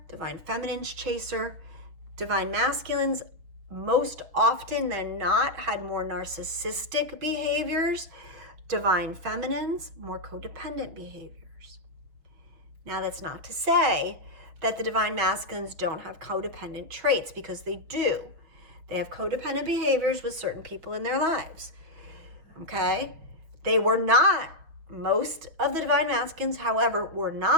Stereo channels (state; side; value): late; left; 6.4 ms